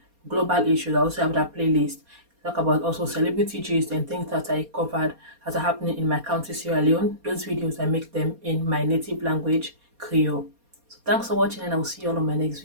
global issues. I also have that playlist. Talk about also celebrity gist and things that I covered that are happening in my country, Sierra Leone. Those videos, I make them in my native language, Creole. So thanks for watching, and I will see you all on my next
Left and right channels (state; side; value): late; left; 4.2 ms